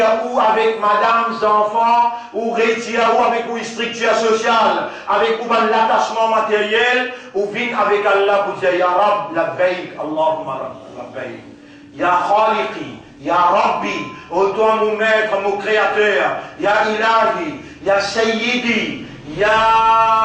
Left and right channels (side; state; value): both; identical; correlation 1.00